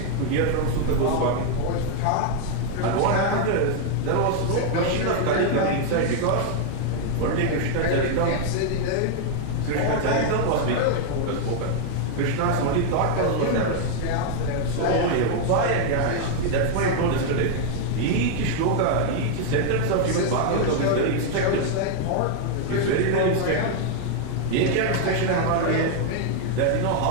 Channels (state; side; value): different; both; correlation 0.00